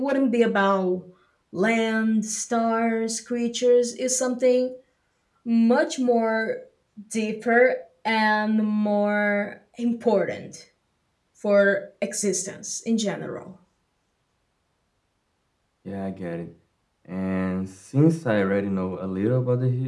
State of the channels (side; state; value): both; identical; correlation 1.00